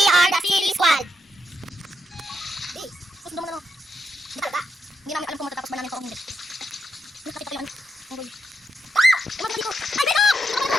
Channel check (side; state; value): both; normal; correlation 0.82